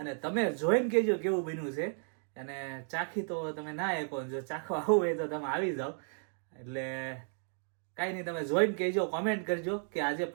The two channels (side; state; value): left; silent; 55 dB below the other